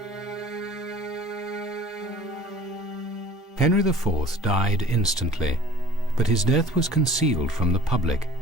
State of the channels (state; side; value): normal; both; correlation 0.47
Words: Henry IV died instantly, but his death was concealed from the public